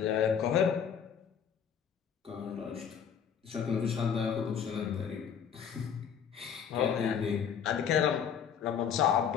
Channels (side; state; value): right; quieter; 7.7 dB